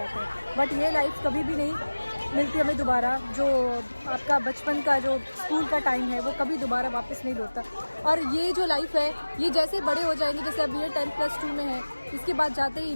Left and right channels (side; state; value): both; inverted; correlation -1.00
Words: हैं। बट ये लाइफ कभी भी नहीं मिलती हमें दोबारा। जो आपका बचपन का जो स्कूल का टाइम है वो कभी दोबारा वापस नहीं लौटता। और ये जो लाइफ है ये जैसे बड़े हो जाएंगे, जैसे अब ये 10+2 में है, इसके बाद जाते ही